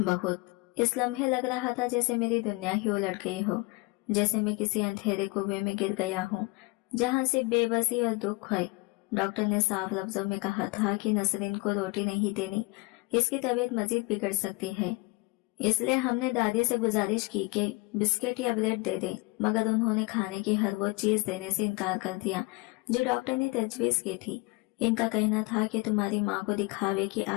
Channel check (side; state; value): right; quieter; 25.1 dB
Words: इस लम्हे लग रहा था जैसे मेरी दुनिया ही उलट गई हो, जैसे मैं किसी अंधेरे कुएं में गिर गया हूँ जहाँ से बेबसी और दुख है। डॉक्टर ने साफ लफ्जों में कहा था कि नसरीन को रोटी नहीं देनी, इसकी तबीयत मजीद बिगड़ सकती है। इसलिए हमने दादी से गुजारिश की कि बिस्किट या ब्रेड दे दें, मगर उन्होंने खाने की हर वो चीज देने से इनकार कर दिया जो डॉक्टर ने तजवीज की थी। इनका कहना था कि तुम्हारी माँ को दिखावे की